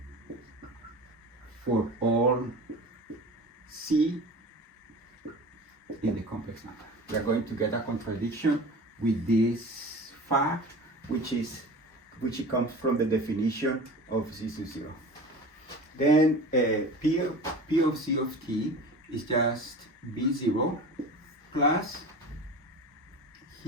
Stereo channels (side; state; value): both; normal; correlation 0.36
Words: for all c in the complex number. We are going to get a contradiction with this fact, which comes from the definition of z sub 0. Then p of z of t is just b0 plus